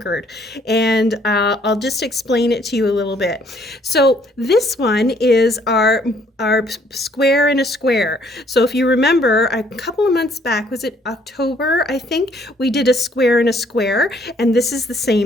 and I'll just explain it to you a little bit. So this one is our square in a square. So if you remember, a couple of months back, was it October, I think, we did a square in a square, and this is the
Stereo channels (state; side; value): normal; both; correlation 0.64